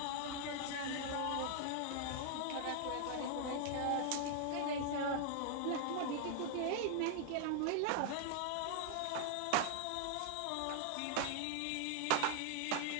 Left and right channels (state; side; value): different; both; correlation -0.01